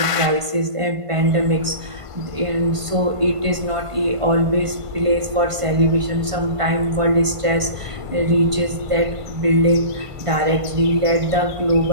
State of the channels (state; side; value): late; left; 1.5 ms